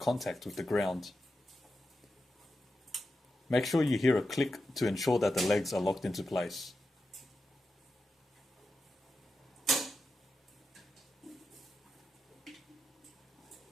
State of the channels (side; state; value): both; normal; correlation 0.90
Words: with the ground. Make sure you hear a click to ensure that the legs are locked into place.